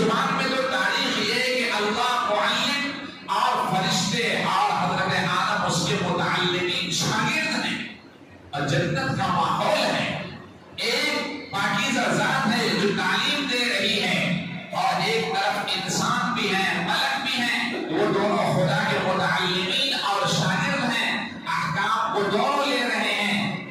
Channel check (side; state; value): both; identical; correlation 1.00